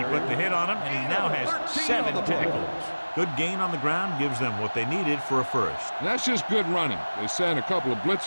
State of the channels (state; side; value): inverted; both; correlation -1.00